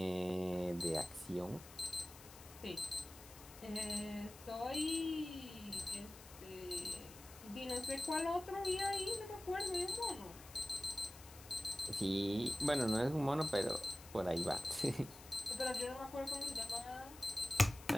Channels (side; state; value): left; noise; hiss, 17 dB below the sound